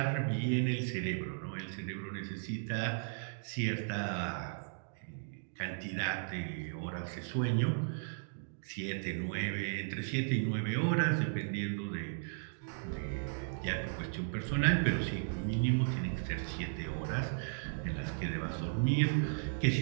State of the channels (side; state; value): left; silent; digital silence